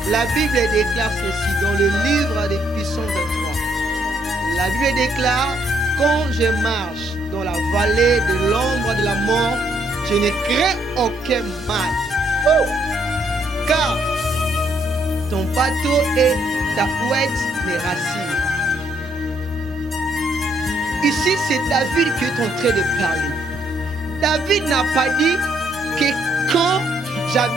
La Bible déclare ceci dans le livre des Psaumes 23. La Bible déclare: quand je marche dans la vallée de l'ombre de la mort, je ne crains aucun mal. Car ton bateau et ta ouette me rassurent. Ici, c'est David qui est en train de parler. David n'a pas dit que quand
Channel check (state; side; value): normal; both; correlation 0.72